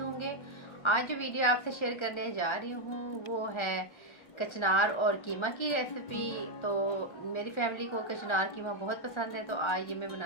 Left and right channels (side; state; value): right; late; 1.3 ms